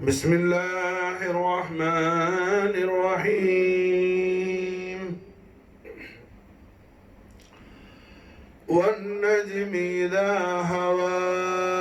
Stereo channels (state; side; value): identical; both; correlation 1.00